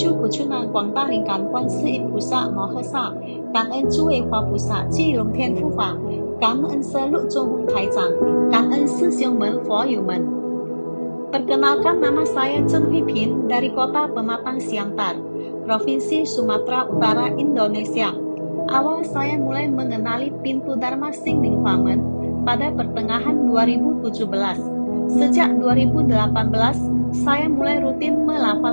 Của Chu Nan Quảng Ta Linh Cảm Quan Sư Yên Phú Sa Mô Hơ Sa, cảm ơn Chu Ê Hoa Phú Sa Chi Long Thiên Phú Phạ, cảm ơn Sơ Lụ Trung Hung Thái Giang, cảm ơn Sư Siêu Men Phó Yu Men. Perkenalkan, nama saya Chen Hui Pin dari kota Pematang Siantar, Provinsi Sumatera Utara, Indonesia. Awal saya mulai mengenali pintu Dharma Singling Huamen pada pertengahan 2017. Sejak 2018, saya mulai rutin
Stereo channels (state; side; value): inverted; both; correlation -1.00